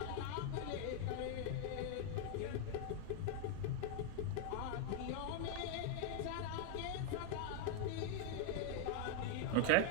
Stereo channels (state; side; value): different; both; correlation 0.00